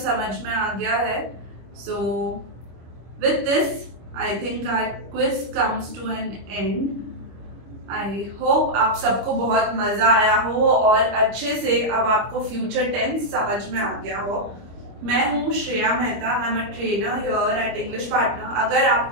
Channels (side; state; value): left; late; 25 ms